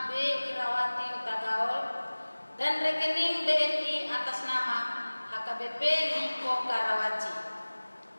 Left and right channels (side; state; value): both; inverted; correlation -1.00